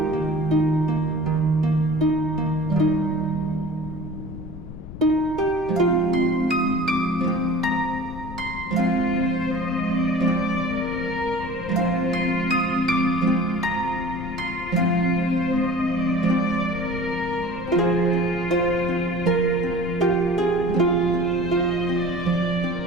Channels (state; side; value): noise; left; rumble, 12 dB below the sound